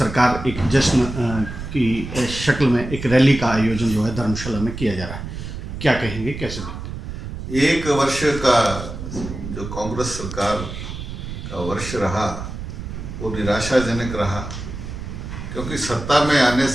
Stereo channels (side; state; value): right; noise; rumble, 8 dB below the sound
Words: एक जश्न की शक्ल में एक रैली का आयोजन जो है धर्मशाला में किया जा रहा है। क्या कहेंगे, कैसे देखते हैं? 1 वर्ष का जो कांग्रेस सरकार का वर्ष रहा वो निराशाजनक रहा, क्योंकि सत्ता में आने